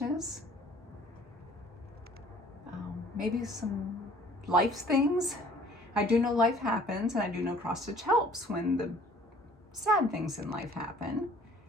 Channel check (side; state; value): both; normal; correlation 0.54